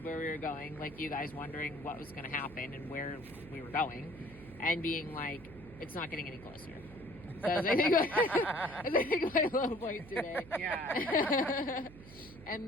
where we were going, like you guys wondering what was going to happen and where we were going, and being like, it's not getting any closer. That's I think my low point today. Yeah.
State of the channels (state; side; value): noise; right; hum, 18 dB below the sound